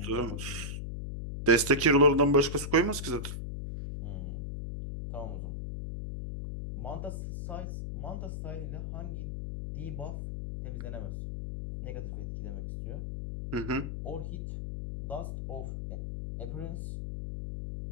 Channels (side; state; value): left; noise; hum, 5 dB below the sound